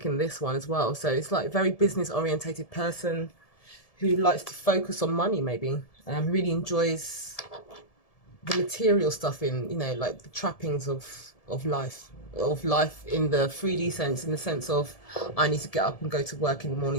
in this one as well. So it's like a very business orientated person who likes to focus on money, maybe. Really enjoys the material stuff in, you know, like the trappings of life in the 3D sense, in the sense of I need to get up and go to work in the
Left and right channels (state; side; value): late; right; 1.7 ms